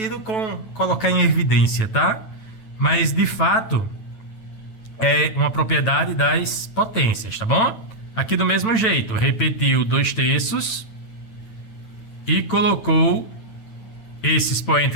com colocar em evidência, tá? Mas, de fato, é uma propriedade das potências, tá bom? Aqui do mesmo jeito, repetiu 2/3 e colocou esse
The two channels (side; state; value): right; late; 9.1 ms